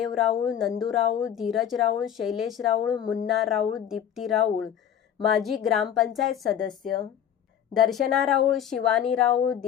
राऊळ, नंदू राऊळ, धीरज राऊळ, शैलेश राऊळ, मुन्ना राऊळ, दीप्ती राऊळ, माजी ग्रामपंचायत सदस्य, दर्शना राऊळ, शिवानी राऊळ,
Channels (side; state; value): right; quieter; 9.5 dB